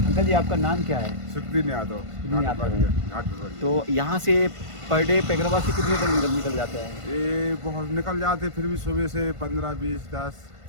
अंकल जी आपका नाम क्या है? सुखदीन यादव, सुखदीन यादव। घाट पिपरिया। तो यहाँ से पर डे पैगराबाद से कितने तक निकल जाते हैं? ये बहुत निकल जाते, फिर भी सुबह से 15, 20, 10,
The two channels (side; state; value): left; late; 1.5 ms